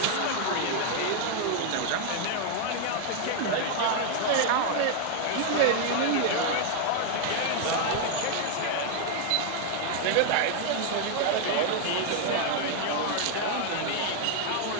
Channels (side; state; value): both; different; correlation 0.00